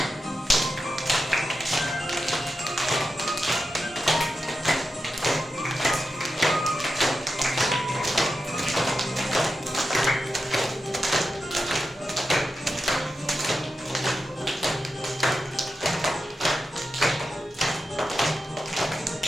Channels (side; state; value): both; normal; correlation 0.90